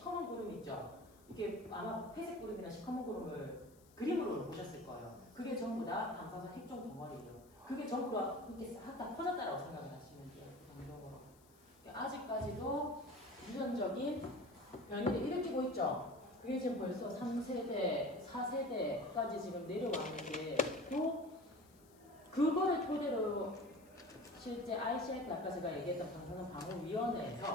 구름 있죠. 이게 아마 회색 구름이나 시커먼 구름을 그림으로 보셨을 거예요. 그게 전부 다 방사성 핵종 덩어리예요. 그게 전부 다 이렇게 싹 다 퍼졌다라고 생각을 하시면 돼요. 그 정도로. 아직까지도 유전적인 변이를 일으키고 있죠. 그게 지금 벌써 3세대, 4세대까지 지금 내려왔는데 또 그거를 토대로 실제 ICF 아까 제가 얘기했던 방사선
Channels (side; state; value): left; noise; hiss, 28 dB below the sound